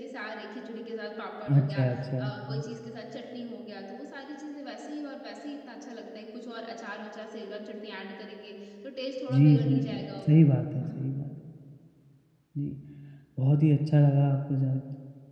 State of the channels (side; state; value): both; identical; correlation 1.00